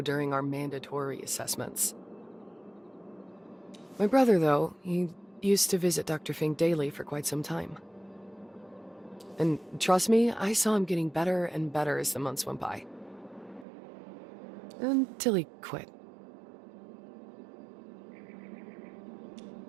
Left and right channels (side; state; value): left; drops out; at 13.7 s